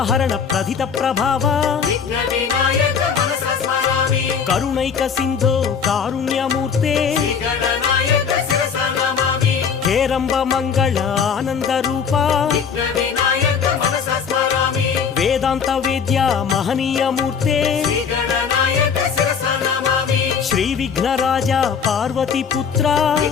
प्रथित प्रभाव करुणैक सिंधो कारुण्यमूर्ते हेरंब मंगल आनंद रूपा वेदांत वेद्या महनीय मूर्ते श्री विघ्नराजा पार्वती पुत्रा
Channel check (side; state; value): right; quieter; 6.6 dB